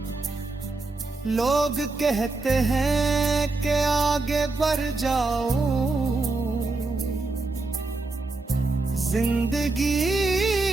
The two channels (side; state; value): left; quieter; 3.4 dB